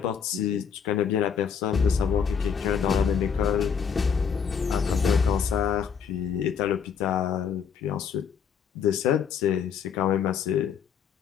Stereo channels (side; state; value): right; quieter; 7.0 dB